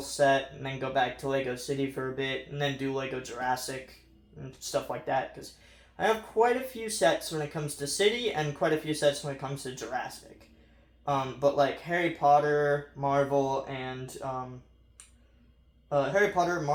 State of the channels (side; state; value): both; identical; correlation 1.00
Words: set, and then go back to Lego City for a bit, and then do Lego Jurassic and stuff like that, because I have quite a few sets when it comes to City, and quite a few sets when it comes to Jurassic. But Harry Potter, Marvel, and